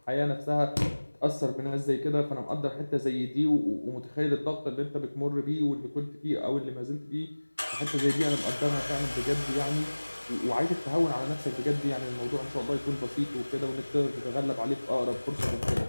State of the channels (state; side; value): inverted; both; correlation -1.00